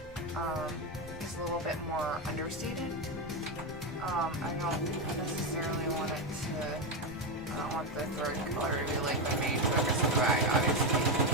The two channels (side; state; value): both; normal; correlation 0.10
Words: is a little bit more understated. I don't necessarily want it to, I don't want the thread color to be like the main focus of the bag, obviously.